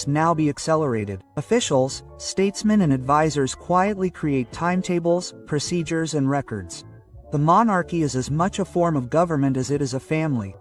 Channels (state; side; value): identical; both; correlation 1.00